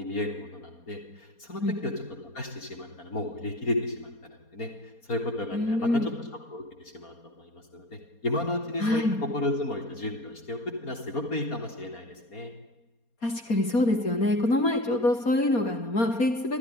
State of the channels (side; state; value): right; late; 4.3 ms